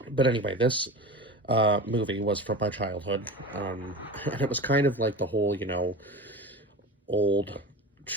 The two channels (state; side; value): normal; both; correlation 0.31